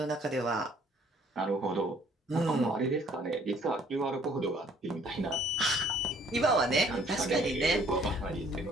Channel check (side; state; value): both; normal; correlation 0.60